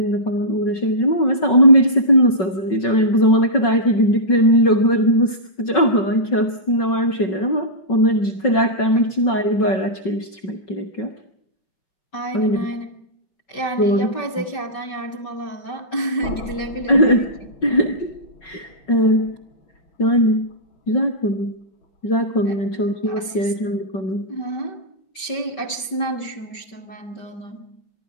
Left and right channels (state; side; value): late; right; 5.2 ms